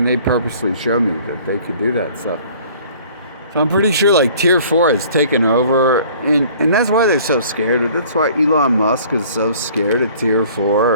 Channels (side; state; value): both; inverted; correlation -0.52